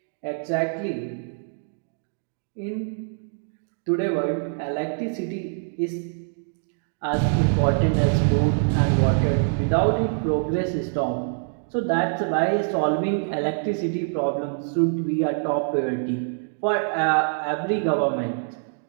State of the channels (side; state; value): left; silent; digital silence